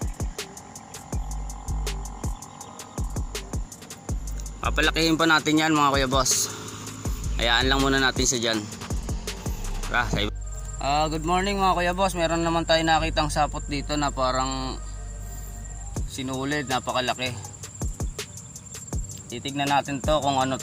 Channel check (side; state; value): both; identical; correlation 1.00